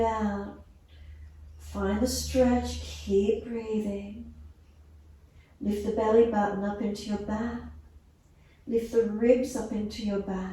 out. Find the stretch, keep breathing. Lift the belly button up into your back. Lift the ribs up into your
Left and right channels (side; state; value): both; identical; correlation 1.00